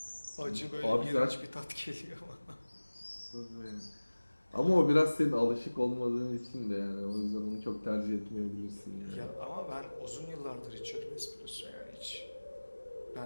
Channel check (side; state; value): both; inverted; correlation -1.00